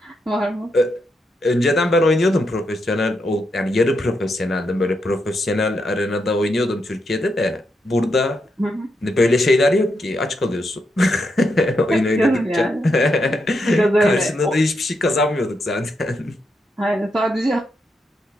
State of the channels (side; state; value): both; normal; correlation 0.82